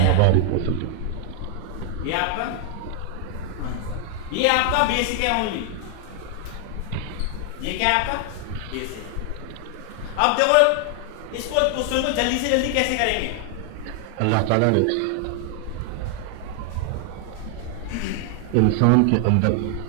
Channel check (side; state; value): both; different; correlation 0.00